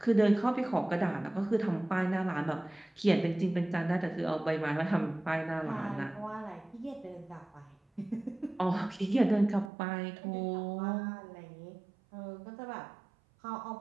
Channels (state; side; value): drops out; left; at 9.7 s